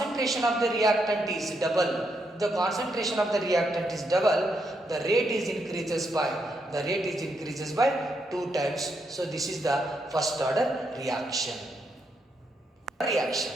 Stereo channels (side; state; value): both; normal; correlation 0.79